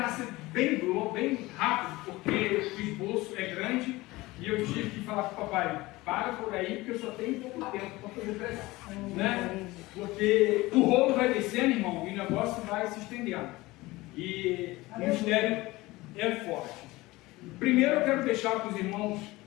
ser bem rápido, porque o esboço é grande e eu tive que falar com o papai, para por aí, porque eu só tenho pouco tempo para fazer pregação, né? Porque o rolo vai descendo, irmão, e o negócio vai se estendendo. E o mistério é forte. Primeiro eu quero deixar para os irmãos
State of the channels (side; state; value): right; quieter; 20.1 dB